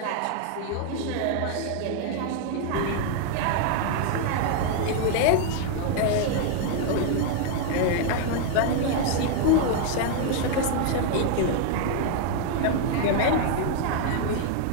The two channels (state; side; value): different; both; correlation 0.00